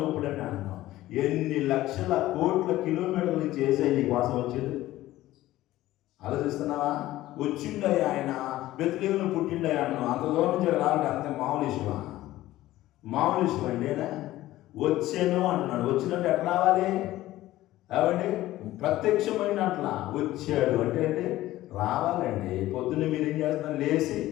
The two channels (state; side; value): quieter; right; 15.7 dB